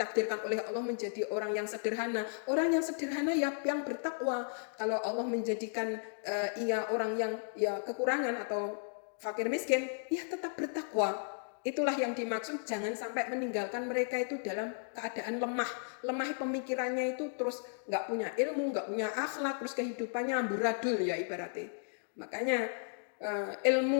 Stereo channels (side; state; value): right; silent; digital silence